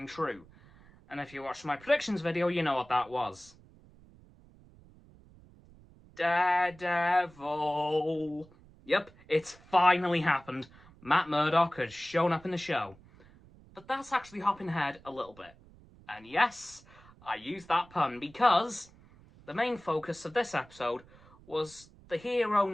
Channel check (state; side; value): noise; right; rumble, 25 dB below the sound